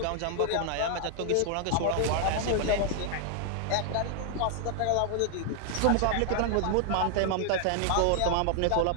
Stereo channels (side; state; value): both; different; correlation 0.00